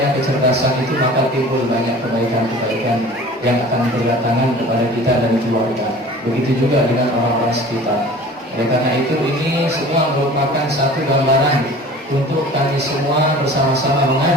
kecerdasan itu, maka timbul banyak kebaikan-kebaikan yang akan berdatangan kepada kita dan keluarga. Begitu juga dengan orang-orang sekitar. Oleh karena itu, ini semua merupakan satu gambaran untuk kami semua bersama-sama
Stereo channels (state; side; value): normal; both; correlation 0.43